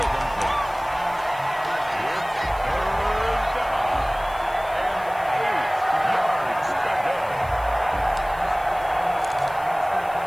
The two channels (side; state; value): left; noise; hiss, 23 dB below the sound